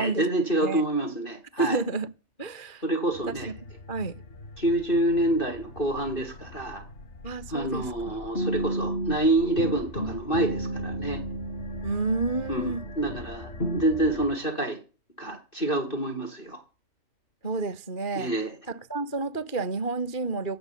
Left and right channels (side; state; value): right; late; 2.4 ms